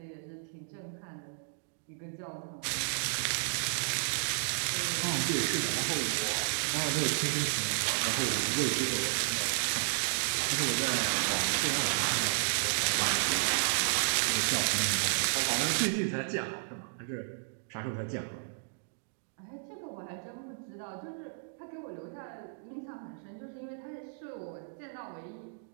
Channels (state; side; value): silent; left; digital silence